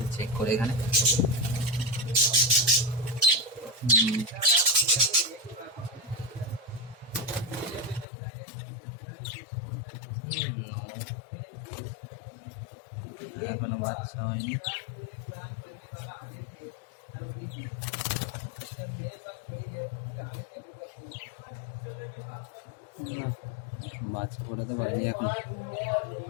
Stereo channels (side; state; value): right; drops out; at 8.1 s